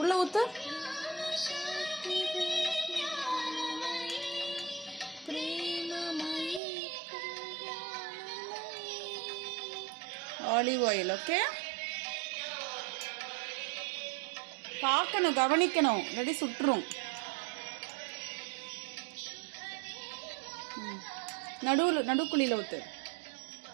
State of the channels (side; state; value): left; drops out; at 6.6 s